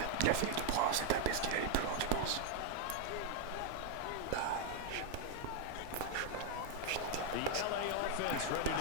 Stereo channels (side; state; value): both; different; correlation 0.00